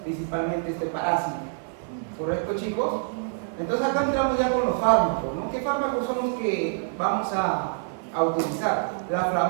principalmente este parásito. ¿Correcto, chicos? Entonces acá entramos ya con los fármacos, ¿no? ¿Qué fármacos son los que vamos a utilizar?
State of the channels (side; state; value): left; silent; digital silence